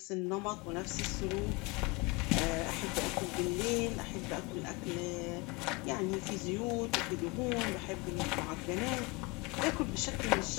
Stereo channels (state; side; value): quieter; right; 26.4 dB